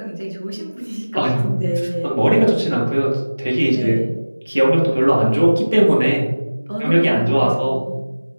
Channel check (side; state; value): both; inverted; correlation -1.00